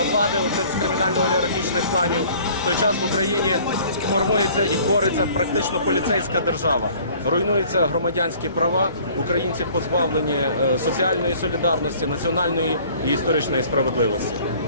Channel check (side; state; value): both; inverted; correlation -0.52